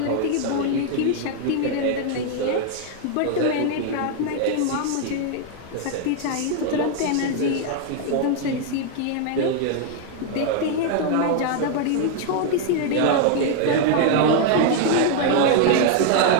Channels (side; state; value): both; different; correlation 0.00